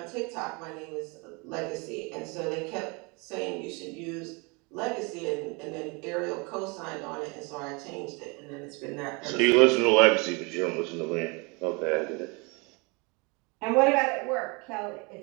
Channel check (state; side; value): quieter; left; 29.5 dB